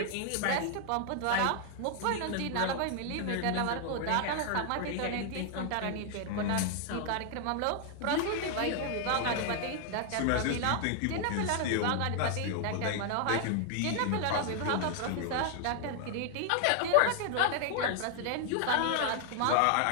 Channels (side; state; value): both; different; correlation 0.00